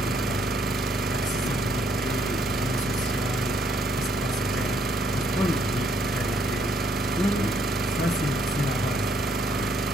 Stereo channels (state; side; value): normal; both; correlation 0.69